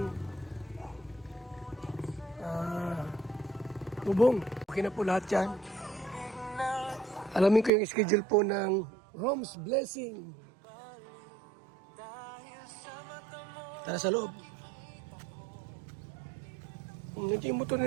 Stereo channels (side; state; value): left; drops out; at 7.7 s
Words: bubong. Okay na po lahat yan. Alamin ko yung schedule po ng Rome's Blessing. Tara sa loob. Ito yung motor